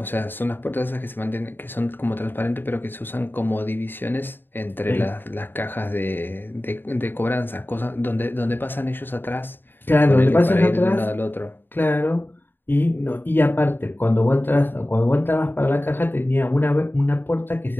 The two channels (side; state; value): right; late; 0.096 ms